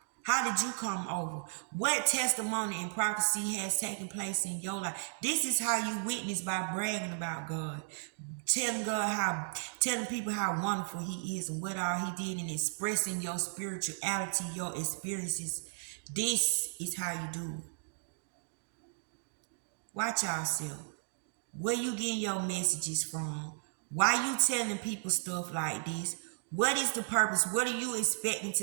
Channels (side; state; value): left; silent; digital silence